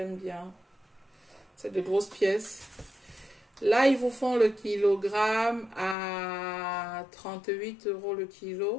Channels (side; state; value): right; drops out; at 6.0 s